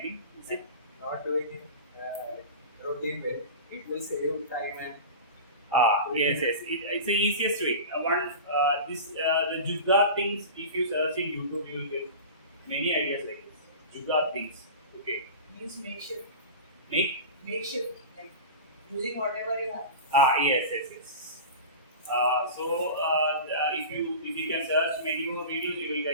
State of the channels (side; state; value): both; inverted; correlation -0.32